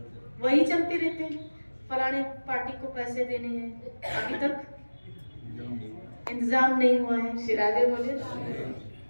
वही चलते रहते हैं। फलाने पार्टी को पैसे देने हैं, अभी तक इंतजाम नहीं हुआ है। श्री राधे बोले,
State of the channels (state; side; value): inverted; both; correlation -1.00